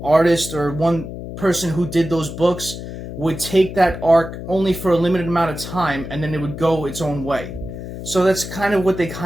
artist or one person who did those books would take that arc only for a limited amount of time, and then it would go its own way. So that's kind of what they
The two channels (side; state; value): left; noise; hum, 9 dB below the sound